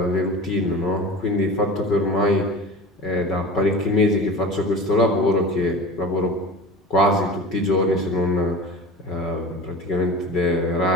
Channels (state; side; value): normal; both; correlation 0.33